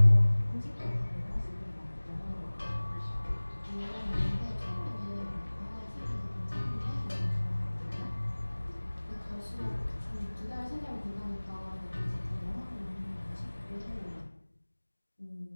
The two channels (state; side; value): inverted; both; correlation -1.00